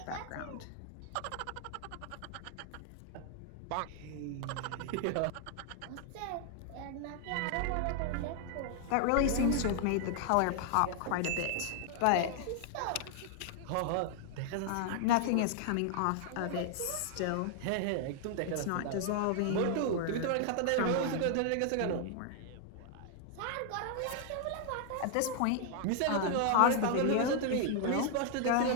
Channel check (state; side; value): different; both; correlation 0.00